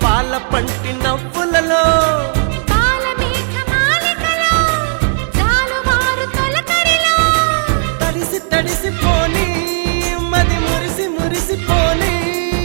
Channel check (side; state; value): left; silent; digital silence